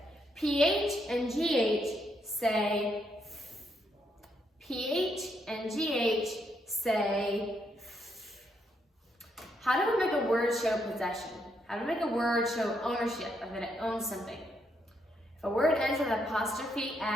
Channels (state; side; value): normal; both; correlation 0.77